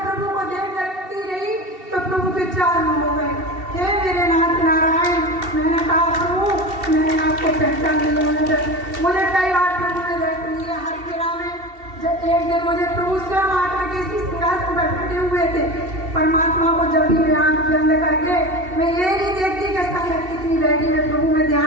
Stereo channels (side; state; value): left; late; 2.7 ms